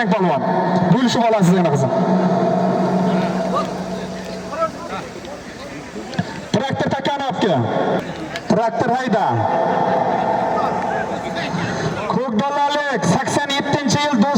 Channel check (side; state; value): both; identical; correlation 1.00